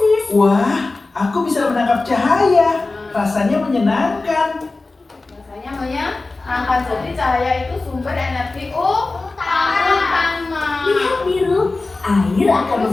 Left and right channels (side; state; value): right; quieter; 3.4 dB